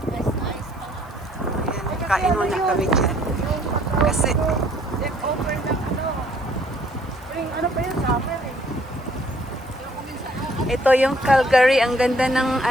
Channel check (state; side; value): noise; right; hiss, 30 dB below the sound